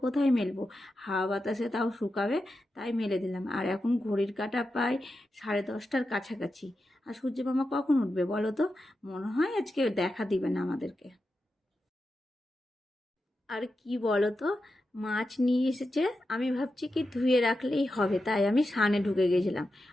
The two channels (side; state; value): both; normal; correlation 0.90